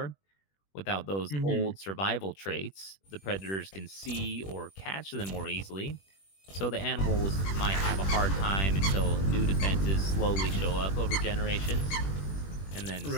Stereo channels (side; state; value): right; late; 21 ms